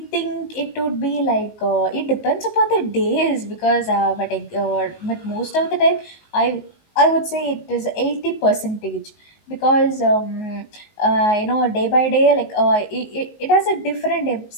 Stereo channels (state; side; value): late; right; 19 ms